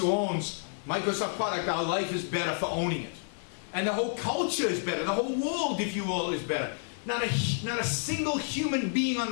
owns Microsoft product, our life is better for owning it. And the whole culture is better. The whole world, if you will, is better. Not a single human being on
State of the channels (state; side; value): silent; right; digital silence